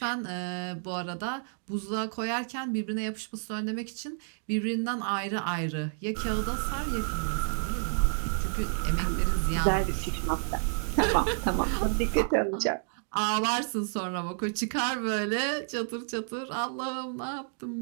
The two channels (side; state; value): left; silent; digital silence